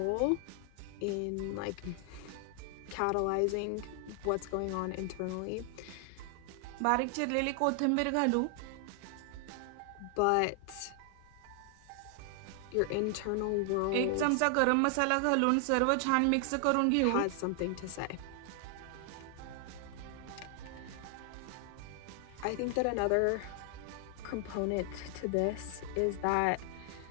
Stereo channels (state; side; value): different; both; correlation 0.00